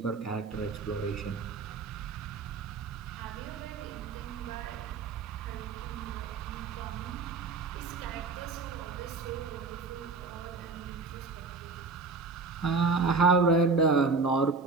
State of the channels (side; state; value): left; quieter; 4.2 dB